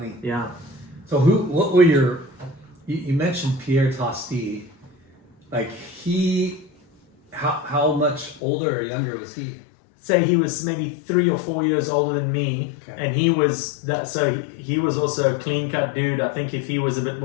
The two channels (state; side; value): drops out; right; at 8.4 s